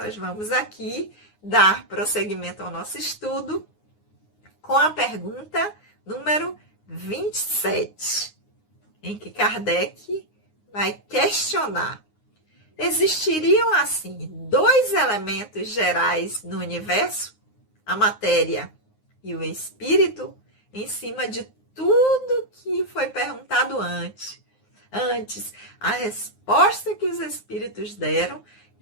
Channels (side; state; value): right; late; 9.6 ms